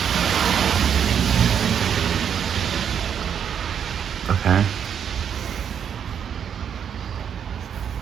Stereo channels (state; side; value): quieter; left; 8.2 dB